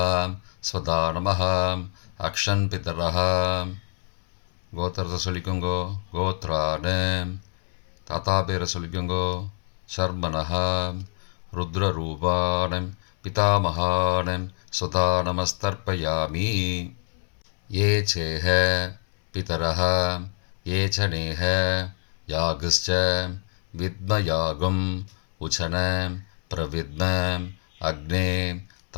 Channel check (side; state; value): right; silent; 61 dB below the other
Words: स्वदा नमः. अक्षन् पितरः. கோத்திரத்தை சொல்லிக்கோங்கோ. கோத்ரானு தாத்தா பேரை சொல்லிக்கோங்கோ. சர்மனஹா ருத்ரரூபான் பிதாமகான் ஸ்வதா நமஸ்தர்ப்பயாமி. ये चेह पितरः ये च नेह यागश्च विद्मयागम् उचन प्रविद्म अग्ने